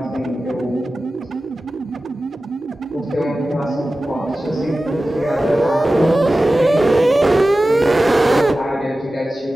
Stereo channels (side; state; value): both; normal; correlation 0.95